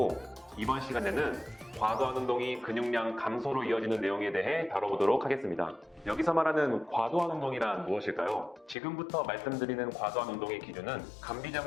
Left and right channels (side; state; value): right; drops out; at 8.8 s